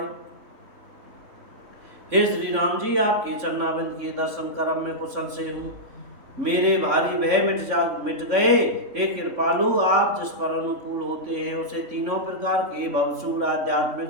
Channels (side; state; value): left; late; 3.6 ms